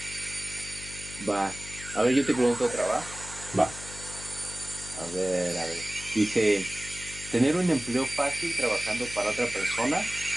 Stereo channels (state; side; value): noise; left; hum, 14 dB below the sound